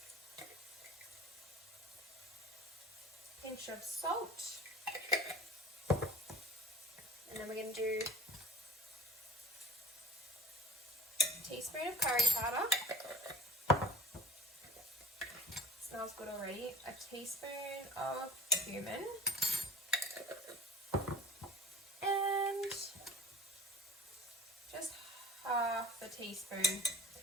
Pinch of salt. And then we're going to do a teaspoon of curry powder. Smells good already. A teaspoon of cumin. And just half a teaspoon,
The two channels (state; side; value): normal; both; correlation 0.41